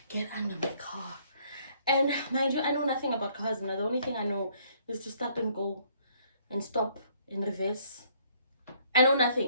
get under my car? And mind you, I know nothing about cars. Now, the only thing I know is to start and go and stop in reverse. I know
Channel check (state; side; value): inverted; both; correlation -0.64